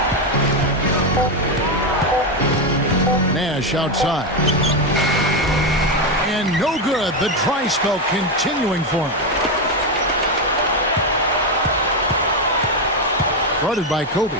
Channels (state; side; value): normal; both; correlation 0.09